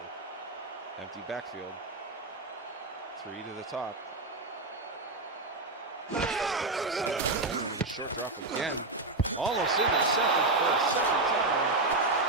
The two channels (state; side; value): quieter; left; 3.2 dB